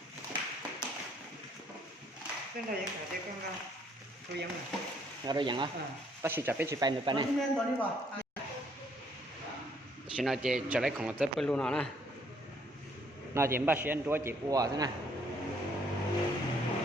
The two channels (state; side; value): normal; both; correlation 0.66